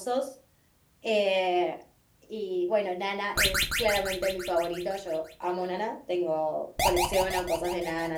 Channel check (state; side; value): identical; both; correlation 1.00